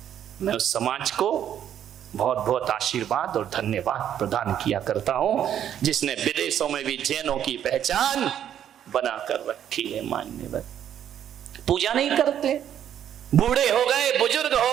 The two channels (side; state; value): left; quieter; 10.0 dB